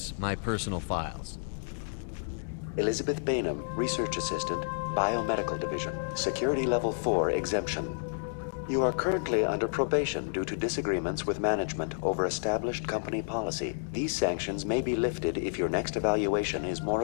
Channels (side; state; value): right; silent; 57 dB below the other